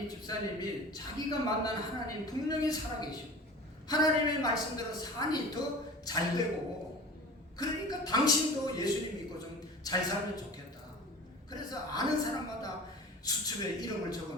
집사님이 자기가 만난 하나님 분명히 살아계시고 하나님의 말씀대로 산이 더 잘 되고 그러니까 당신도 예수님 믿고 좀 잘 살면 좋겠다. 그래서 아는 사람마다 수첩에 이름을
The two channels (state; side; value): normal; both; correlation 0.38